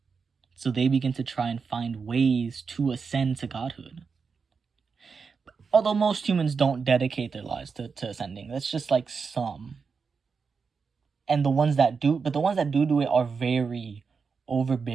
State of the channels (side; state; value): left; quieter; 5.3 dB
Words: So they begin to try and find ways to ascend to godhood. Although most humans don't dedicate their lives to ascending. That's just like some. And the ones that do it are very